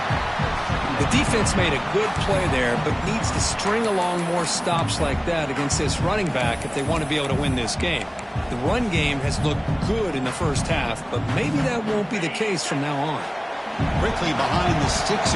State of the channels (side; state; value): both; identical; correlation 1.00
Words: The defense made a good play there, but needs to string along more stops like that against this running back if they want to be able to win this game. The run game has looked good in the first half, but maybe that won't be the case from now on. Quickly behind the sticks